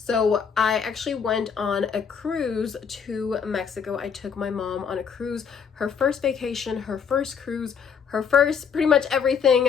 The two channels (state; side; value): quieter; right; 6.7 dB